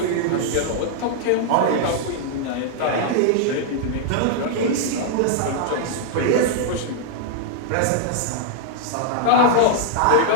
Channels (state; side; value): different; both; correlation -0.01